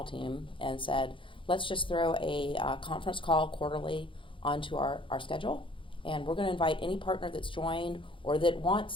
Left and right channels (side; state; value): right; late; 0.25 ms